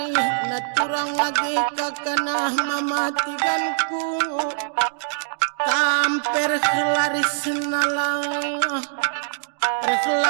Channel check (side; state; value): left; silent; digital silence